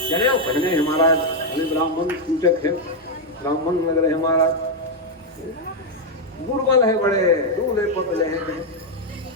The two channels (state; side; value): normal; both; correlation 0.01